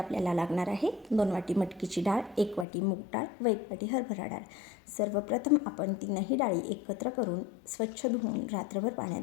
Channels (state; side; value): drops out; right; at 2.7 s